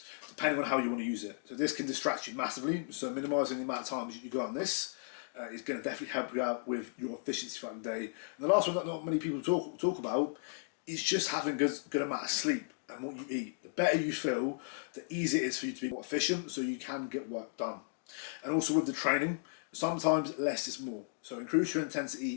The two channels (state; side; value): silent; right; digital silence